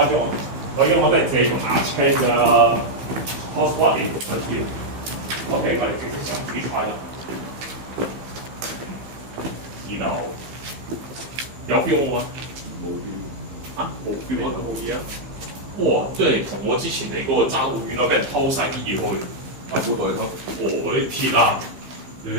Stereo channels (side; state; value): left; late; 15 ms